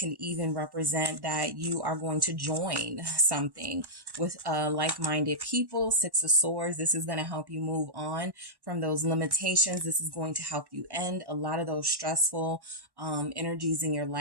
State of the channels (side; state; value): left; late; 1.1 ms